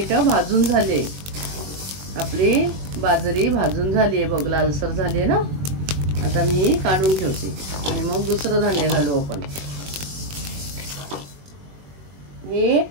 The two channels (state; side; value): late; left; 21 ms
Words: भाजून झाले। आपली बाजरी भाजून झाली आहे बघ, लालसर झाली आहे ना। आता मी काढून ठेवते आणि मग दुसरं धान्य घालू आपण। हे